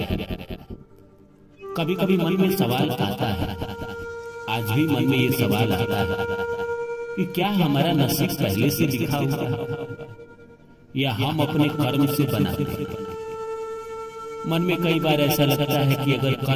कभी कभी मन में सवाल आता है, आज भी मन में ये सवाल आता है कि क्या हमारा नसीब पहले से लिखा हुआ या हम अपने कर्म से बनाते हैं। मन में कई बार ऐसा लगता है कि अगर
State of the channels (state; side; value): identical; both; correlation 1.00